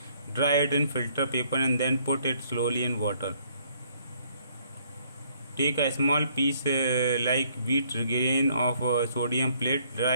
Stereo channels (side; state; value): both; inverted; correlation -0.65